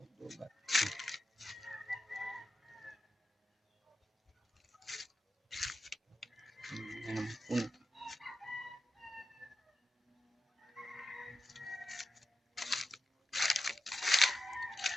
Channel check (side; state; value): both; normal; correlation 0.89